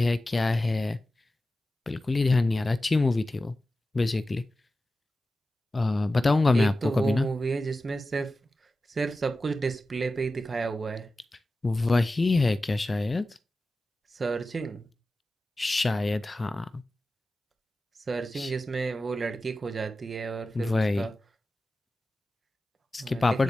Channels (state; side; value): normal; both; correlation 0.94